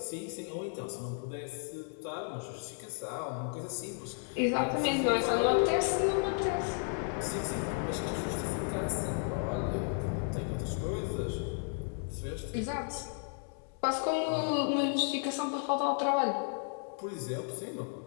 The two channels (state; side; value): silent; right; 55 dB below the other